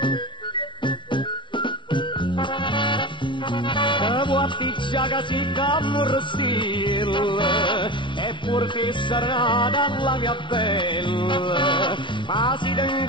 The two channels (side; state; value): right; late; 0.23 ms